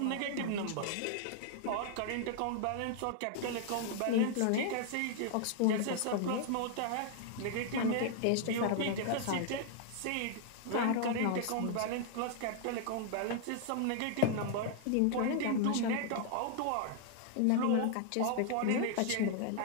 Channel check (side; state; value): both; different; correlation 0.00